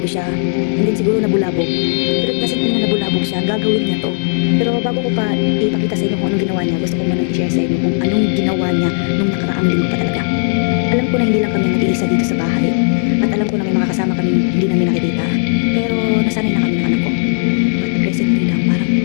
ko siya. And then siguro nabulabog. Pero it doesn't mean na nabulabog siya. Gagawin niya to. Pero bago ko pa ipakita sa inyo kung anong ginawa niya, gusto ko manang i-share sa inyo kung anong ginawa niya nung nakaraang linggo pa talaga. Alam ko na hindi lang kami ang nag-iisa dito sa bahay. At alam ko na may mga kasama kaming hindi namin nakikita. Pero nasanay na kami ng anak ko. But recently lang parang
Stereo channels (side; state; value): right; silent; digital silence